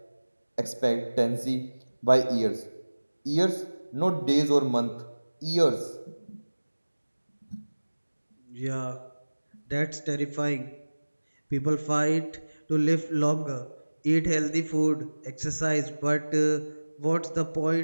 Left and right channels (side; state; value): both; inverted; correlation -1.00